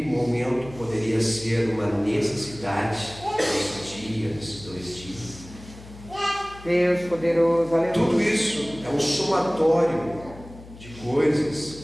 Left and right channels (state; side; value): noise; left; hum, 18 dB below the sound